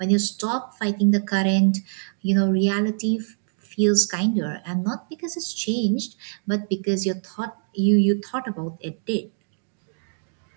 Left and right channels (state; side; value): silent; left; digital silence